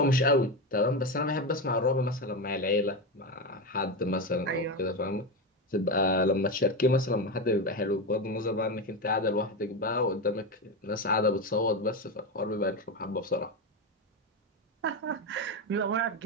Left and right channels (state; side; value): normal; both; correlation 0.15